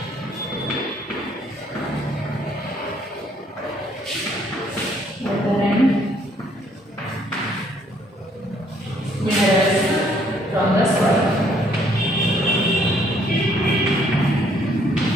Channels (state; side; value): normal; both; correlation 0.65